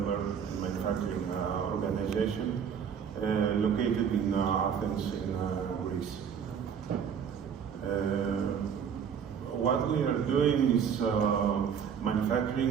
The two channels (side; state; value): left; quieter; 7.5 dB